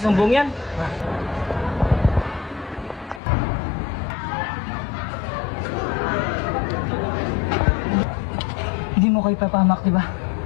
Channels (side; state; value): right; drops out; at 3.2 s